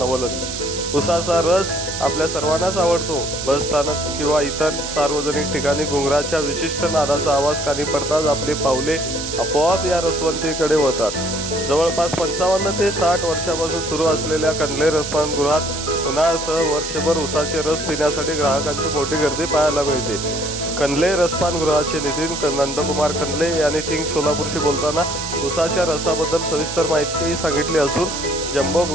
उसाचा रस आपल्या सर्वांनाच आवडतो। बसस्थानक किंवा इतर सार्वजनिक ठिकाणी घुंगराच्या विशिष्ट नादाचा आवाज कानी पडताच आपली पावले आपोआप या रसवंतीकडे वळतात। जवळपास 55 ते 60 वर्षापासून सुरू असलेल्या कंदले रसपान गृहात उन्हाळ्यासह वर्षभर उसाचे रस पिण्यासाठी ग्राहकांची मोठी गर्दी पाहायला मिळते। कंदले रसपान गृहाचे नितीन नंदकुमार कंदले यांनी किंग सोलापूरशी बोलताना उसाच्या रसाबद्दल सविस्तर माहिती सांगितली असून जम्बो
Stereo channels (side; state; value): right; noise; hiss, 6 dB below the sound